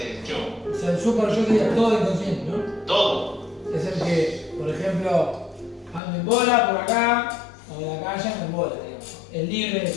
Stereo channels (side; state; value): right; drops out; at 6.0 s